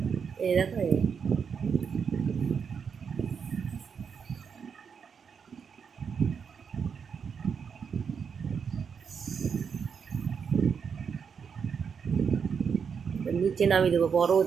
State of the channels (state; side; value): quieter; left; 6.5 dB